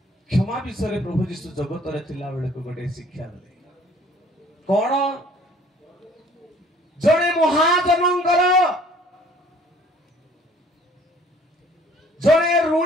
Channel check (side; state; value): both; normal; correlation 0.55